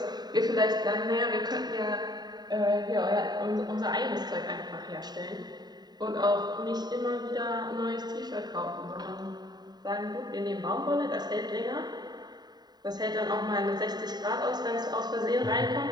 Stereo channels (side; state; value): left; late; 0.20 ms